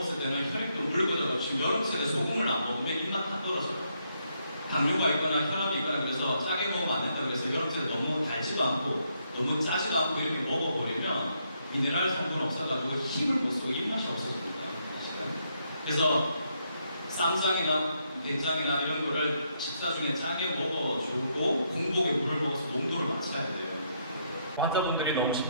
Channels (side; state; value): both; inverted; correlation -0.76